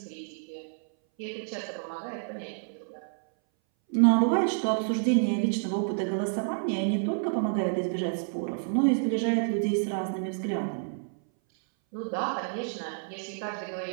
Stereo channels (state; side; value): silent; left; 59 dB below the other